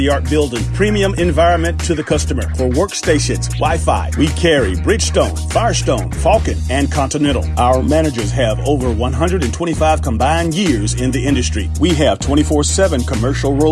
building, premium environment to the customer. For workstations, Wi-Fi, we carry Bridgestone, Firestone, Falcon, and Continental. Our managers have over 125 combined years in the industry. We have 24/7 commercial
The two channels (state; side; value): identical; both; correlation 1.00